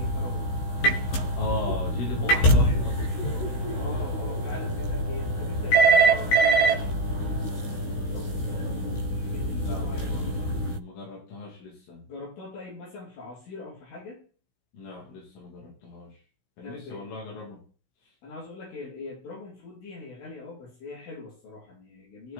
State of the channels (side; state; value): right; late; 16 ms